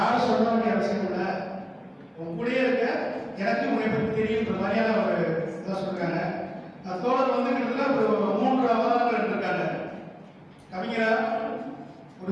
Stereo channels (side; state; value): both; identical; correlation 1.00